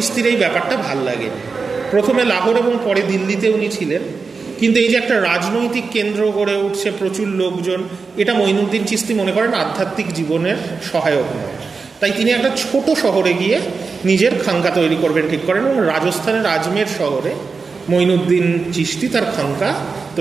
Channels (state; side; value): quieter; left; 4.7 dB